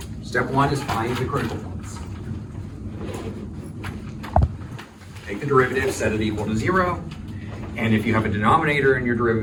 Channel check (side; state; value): both; identical; correlation 1.00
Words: Step 1 is find the critical points. Take the derivative, set it equal to 0, and if you have a denominator in your